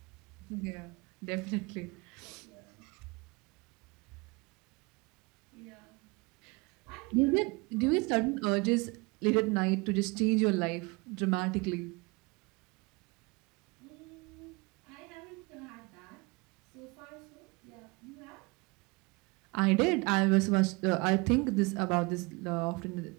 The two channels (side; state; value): left; quieter; 27.0 dB